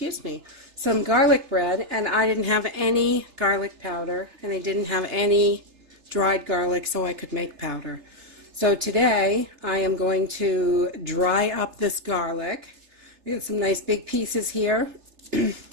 me, some garlic bread, and I didn't have any garlic powder, and I didn't have any dried garlic, so I could make powder. So today, I am going to dry up this garlic. We got some nice big pieces here.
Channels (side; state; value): left; late; 3.3 ms